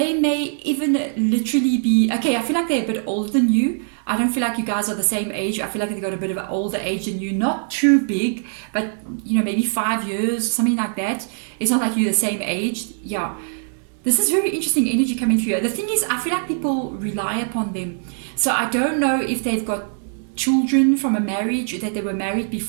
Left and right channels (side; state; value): left; silent; 64 dB below the other